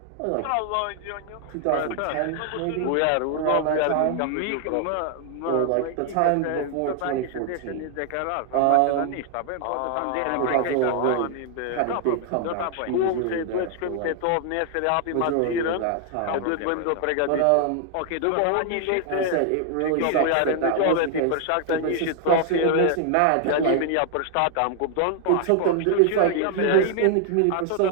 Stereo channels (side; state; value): both; different; correlation 0.00